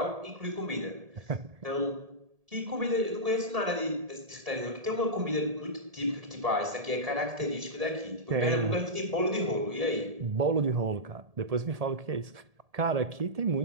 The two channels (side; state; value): left; late; 1.7 ms